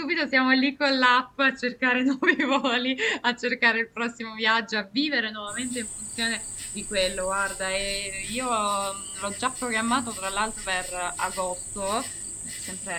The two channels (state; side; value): identical; both; correlation 1.00